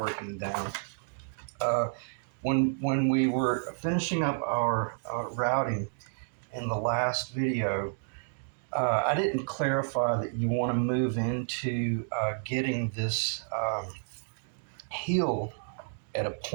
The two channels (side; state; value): left; silent; digital silence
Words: down. Uh, when we were finishing up our routing in the last video, I didn't clarify that you want to move into getting this heel at a